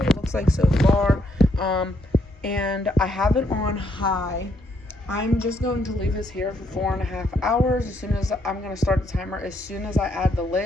it looks like so far. And I have it on high. I'm just going to leave this here for 4.5 hours. As soon as I'm going to start the timer as soon as I add the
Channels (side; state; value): both; normal; correlation 0.73